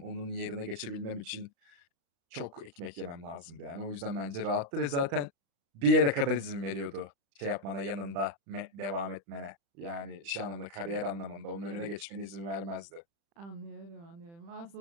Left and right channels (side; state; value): left; late; 35 ms